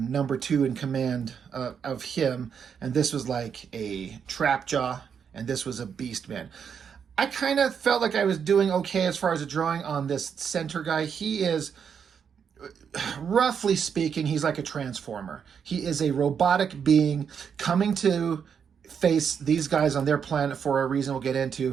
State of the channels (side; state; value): left; quieter; 7.2 dB